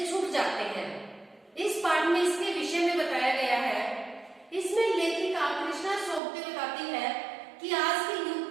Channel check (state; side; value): drops out; left; at 6.2 s